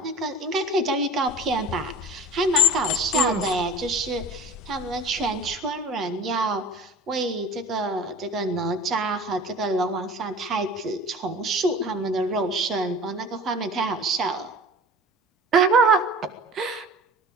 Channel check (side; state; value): both; normal; correlation 0.40